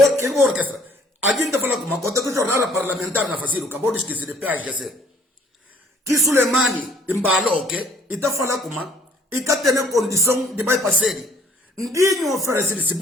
que orquestra. Alguém que fala com uma conta que jornada parlamentar na facil, acabou de esquecer de PHC. Que Suleimani embalou que e tá falando como e tá tendo condição de vai passar. Ninguém oferece se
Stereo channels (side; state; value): both; normal; correlation 0.59